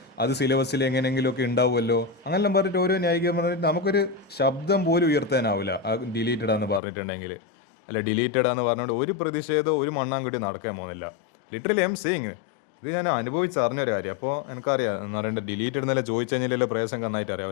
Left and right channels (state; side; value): drops out; right; at 6.8 s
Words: അത് സിലബസിൽ എങ്ങനെയെങ്കിലുമൊക്കെ ഉണ്ടാവുമല്ലോ, അങ്ങനെല്ലാം പറഞ്ഞിട്ട് ഓരോ ന്യായീകരണം പറഞ്ഞിട്ട് നമുക്കൊരു ശബ്ദം പോലും ഉയർത്താനാവില്ല ആ ഡിലീറ്റഡാന്ന് പറഞ്ഞിട്ടുണ്ടെങ്കിൽ. അല്ല ഡിലീറ്റഡാന്ന് പറഞ്ഞുകൊണ്ട് ഒരു പ്രതിഷേധം ഒരു മണ്ണാൻകുട്ടി നടക്കാൻ പോകുന്നില്ല. ലിറ്ററലി ഐ എം സേയിങ്, ഇത് ഞാൻ അനുഭവിച്ചറിഞ്ഞൊരു കാര്യം. അപ്പോൾ എനിക്കറിയാം എന്ന് പറയേണ്ടത് ഡിലീറ്റഡ് എന്നല്ല ചോദിച്ചു കഴിഞ്ഞാൽ പ്രയാസം നന്നായിട്ട് അറിയാം.